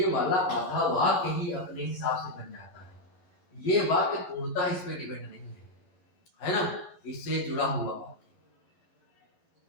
वाला आधा वाक्य ही अपने हिसाब से बन जाता है। ये वाक्य पूर्णतः इस पे डिपेंड नहीं है ना, इससे जुड़ा हुआ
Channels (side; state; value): right; late; 12 ms